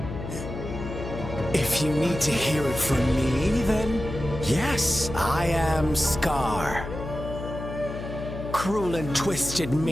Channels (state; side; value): noise; left; hum, 8 dB below the sound